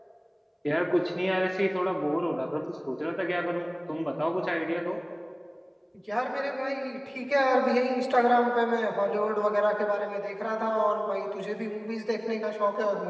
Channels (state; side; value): identical; both; correlation 1.00